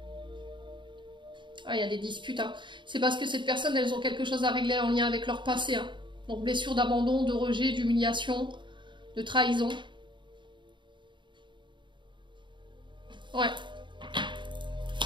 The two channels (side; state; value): left; late; 0.23 ms